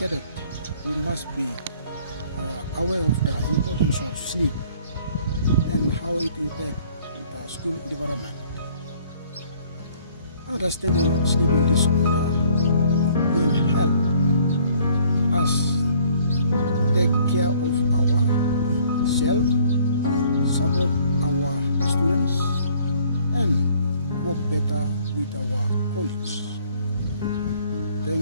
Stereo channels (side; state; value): both; inverted; correlation -0.59